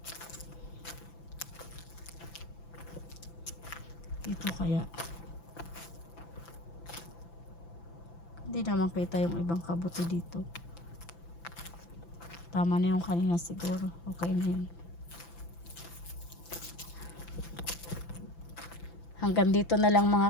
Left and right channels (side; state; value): right; late; 5.9 ms